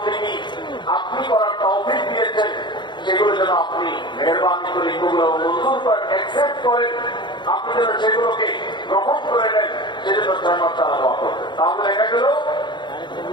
আপনি করার তৌফিক দিয়েছেন, সেগুলো যেন আপনি মেহেরবানি করে এগুলো মঞ্জুর করেন, অ্যাকসেপ্ট করেন, আপনি যেন সেগুলোকে গ্রহণ করে নেন, সেজন্য 6 মাস তারা দোয়া করতেন। তাহলে দেখা গেল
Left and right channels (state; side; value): late; right; 0.22 ms